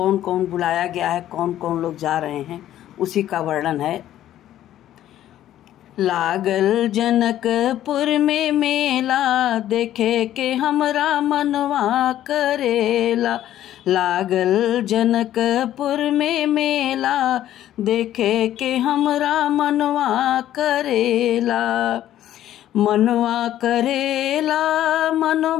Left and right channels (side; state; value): right; quieter; 12.4 dB